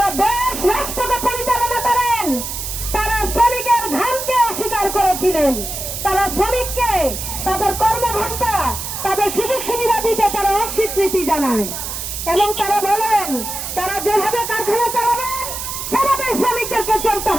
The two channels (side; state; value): right; noise; hiss, 6 dB below the sound